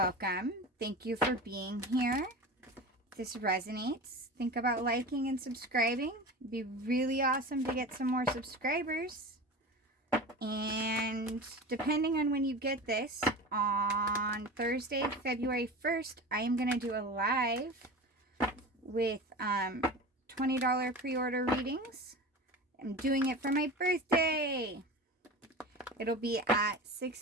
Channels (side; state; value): both; normal; correlation 0.31